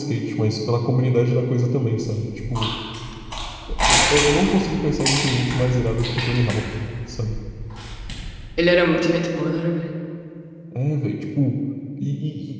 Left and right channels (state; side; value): identical; both; correlation 1.00